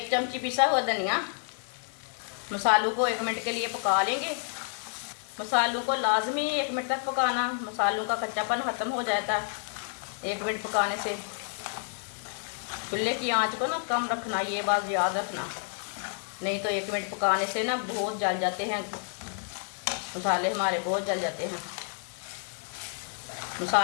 चमची पिसा हुआ धनिया। मसालों को 1 मिनट के लिए पका लेंगे। मसालों को लाजमी 1 मिनट तक पकाना, मसालों का कच्चापन ख़त्म हो जाता है 1 मिनट पकाने से। चूल्हे की आंच को ना कम रखना, ये बात याद रखना, नहीं तो 1 मिनट पकाने से ना बहुत जल जाते हैं मसाले, हमारे बहुत जल जाते हैं।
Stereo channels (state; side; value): silent; right; 58 dB below the other